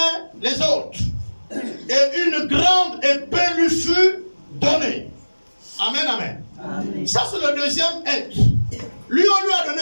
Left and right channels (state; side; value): inverted; both; correlation -1.00